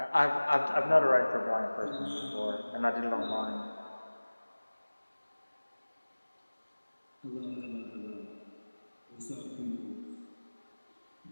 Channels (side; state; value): both; inverted; correlation -1.00